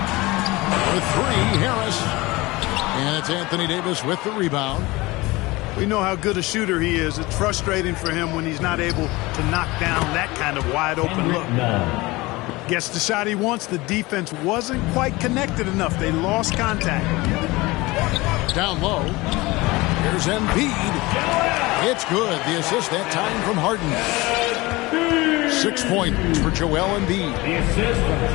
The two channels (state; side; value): quieter; right; 21.7 dB